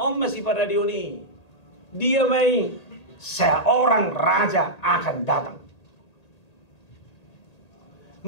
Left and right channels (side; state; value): right; late; 1.8 ms